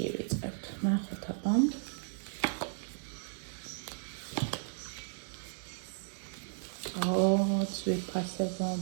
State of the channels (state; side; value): silent; left; 55 dB below the other